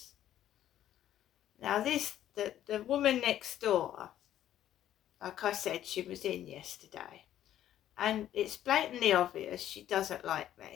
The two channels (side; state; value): right; quieter; 11.8 dB